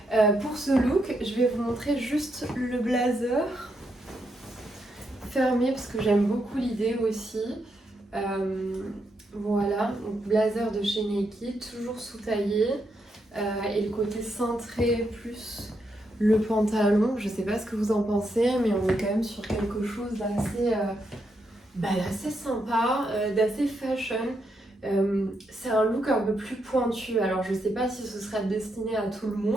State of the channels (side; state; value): both; normal; correlation 0.80